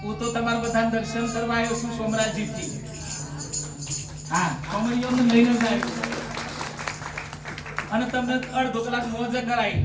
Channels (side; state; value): both; identical; correlation 1.00